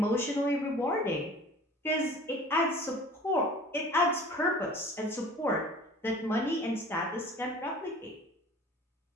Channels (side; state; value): both; normal; correlation 0.45